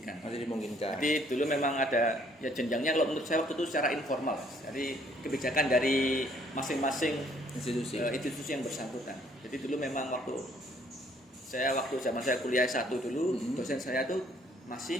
Jadi dulu memang ada ya jenjangnya, kalau menurut saya waktu itu secara informal. Jadi kebijakan dari masing-masing institusi yang bersangkutan. Jadi dulu memang waktu zaman saya kuliah S1 dulu, dosen saya tuh masih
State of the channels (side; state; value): both; normal; correlation 0.63